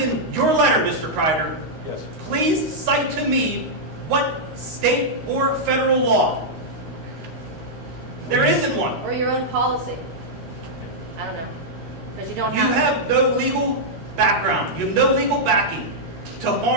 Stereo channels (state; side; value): late; left; 13 ms